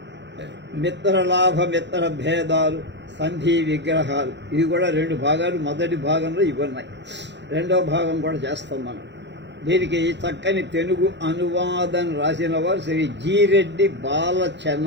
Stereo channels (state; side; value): late; left; 0.52 ms